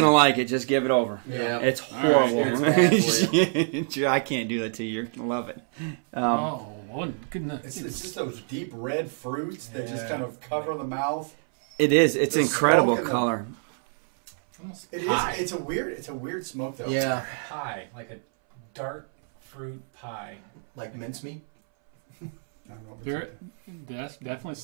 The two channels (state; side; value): silent; left; 61 dB below the other